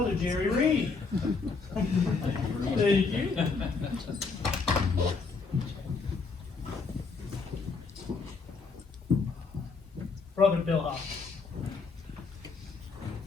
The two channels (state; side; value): quieter; right; 4.6 dB